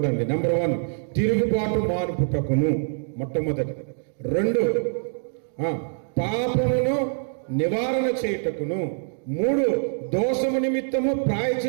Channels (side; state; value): left; silent; digital silence